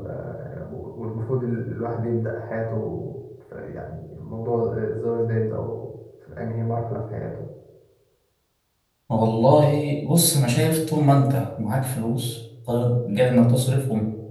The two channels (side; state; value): both; identical; correlation 1.00